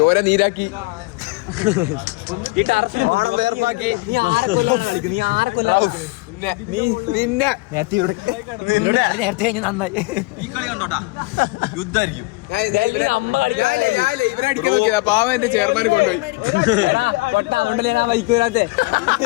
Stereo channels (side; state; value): right; quieter; 23.8 dB